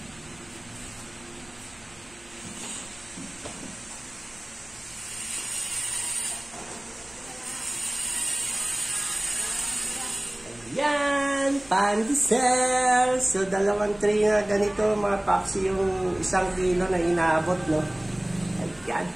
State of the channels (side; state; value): right; noise; hum, 27 dB below the sound